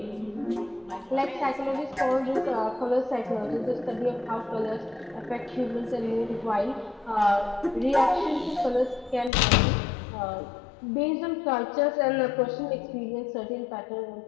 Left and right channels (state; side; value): drops out; right; at 9.3 s